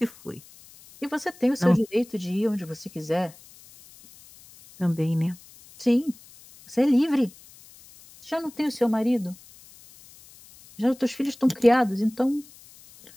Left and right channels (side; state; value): left; noise; hiss, 23 dB below the sound